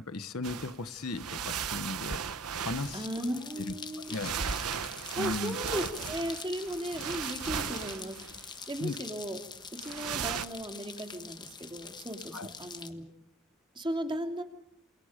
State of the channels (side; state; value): both; normal; correlation 0.53